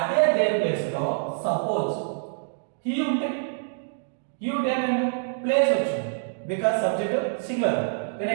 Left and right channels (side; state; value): left; silent; digital silence